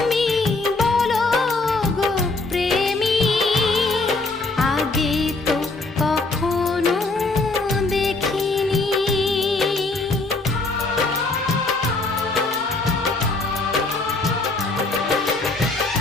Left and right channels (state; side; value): quieter; right; 3.4 dB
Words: বলো গো প্রেমী, আগে তো কখনো দেখিনি।